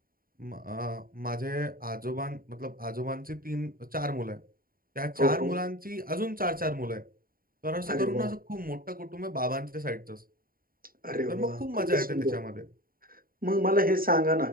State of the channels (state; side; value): late; left; 0.42 ms